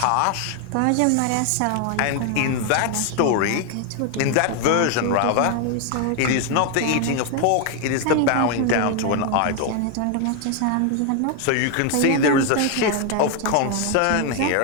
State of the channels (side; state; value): both; different; correlation 0.01